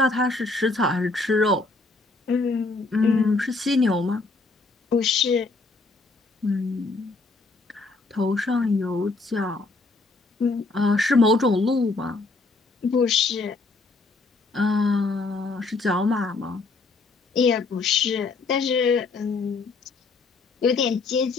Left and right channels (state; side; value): quieter; right; 3.7 dB